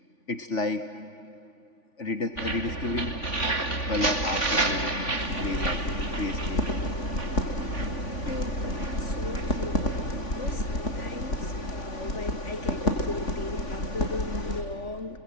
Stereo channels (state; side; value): late; right; 3.5 ms